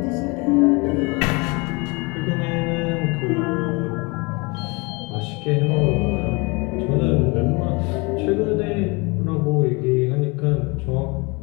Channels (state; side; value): quieter; right; 27.9 dB